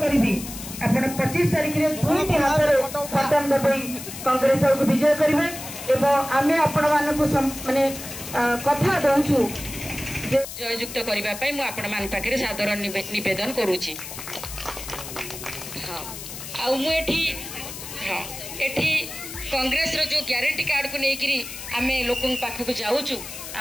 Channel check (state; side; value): noise; left; hiss, 10 dB below the sound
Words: आप 25 तारीख में दुईटी हाथ में बटन दबाई कांग्रेस दल को विजय करेंगे एवं आम आपण माने कथा दौचु जययुक्त करने आपण मान पाखे सादर निवेदन करुच्ची। हाँ आठी हाँ एठी कांग्रेस रो जो ग्यारंटी कार्ड को लेकिरी आम लोक पाखक जाऊँ